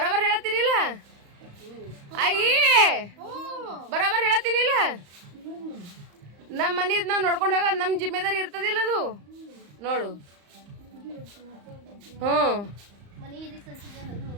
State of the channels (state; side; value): late; left; 35 ms